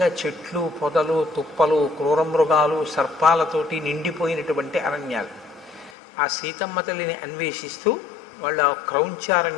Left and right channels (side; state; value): right; drops out; at 6.0 s